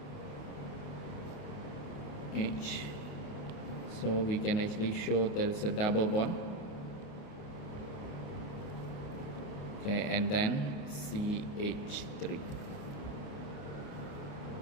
So we can actually show there is a double bond. Okay, and then CH3,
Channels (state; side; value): late; right; 28 ms